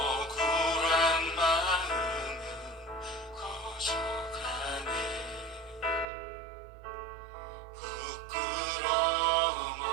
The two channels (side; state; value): left; drops out; at 6.1 s